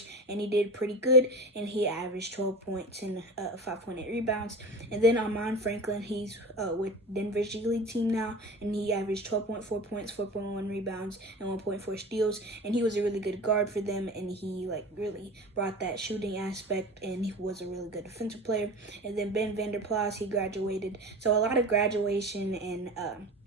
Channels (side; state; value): both; normal; correlation 0.33